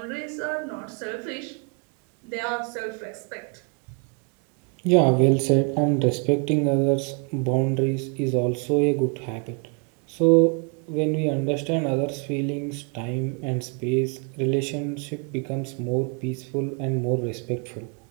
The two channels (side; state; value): left; quieter; 35.8 dB